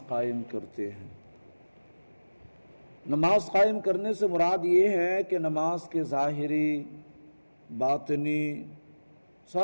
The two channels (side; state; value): both; inverted; correlation -1.00